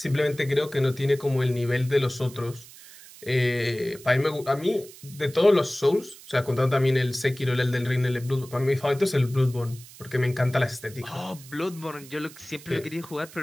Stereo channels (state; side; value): noise; right; hiss, 19 dB below the sound